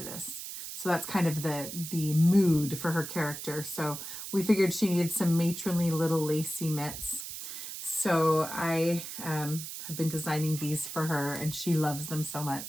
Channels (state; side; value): noise; right; hiss, 8 dB below the sound